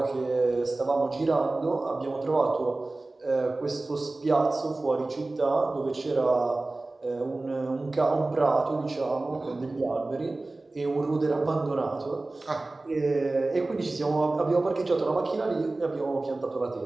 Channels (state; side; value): quieter; left; 3.1 dB